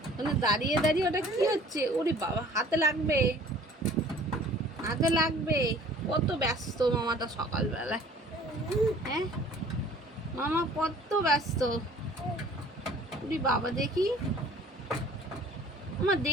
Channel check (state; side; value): normal; both; correlation 0.51